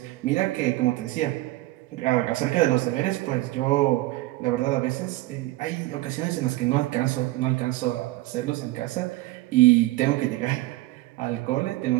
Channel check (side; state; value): left; quieter; 18.4 dB